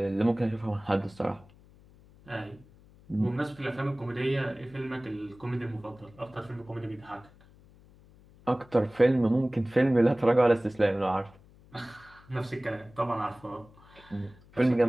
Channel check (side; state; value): left; noise; hum, 25 dB below the sound